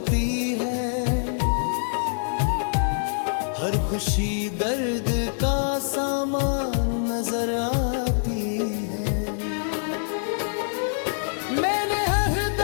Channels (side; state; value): right; silent; digital silence